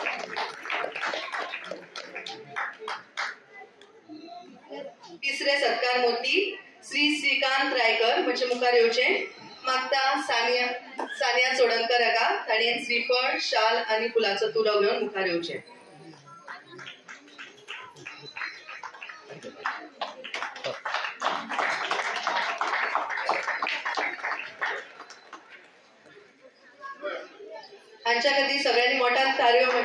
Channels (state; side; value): identical; both; correlation 1.00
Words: तिसरे सत्कार मुर्ती श्री श्रीकांत रायकर म्हणजे मुखार येवचें. मागता सानिया चोडणकर हाका ताणें श्रीफळ शाल आनी फुलाचो तुरो घेवन मुखार येवचें. हांच्या खातीर सगळ्यांनी मोठ्यान ताळयो